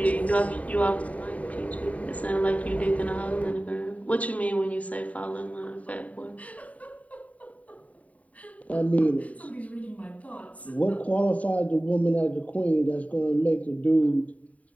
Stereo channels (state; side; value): late; right; 0.069 ms